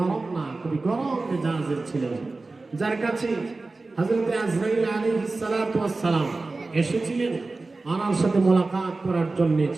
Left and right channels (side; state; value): left; quieter; 3.5 dB